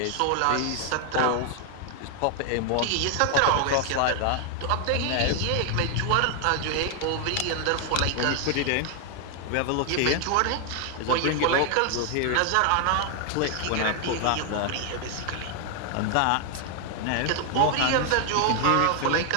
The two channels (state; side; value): different; both; correlation 0.00